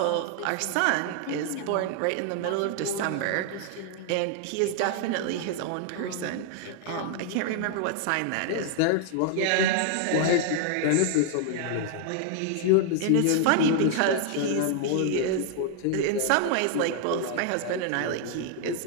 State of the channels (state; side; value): different; both; correlation 0.00